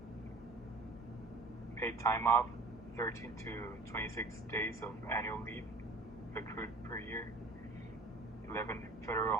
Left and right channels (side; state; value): left; quieter; 3.2 dB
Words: Paid time off, 13 to 26 days of annual leave accrued per year, 11 federal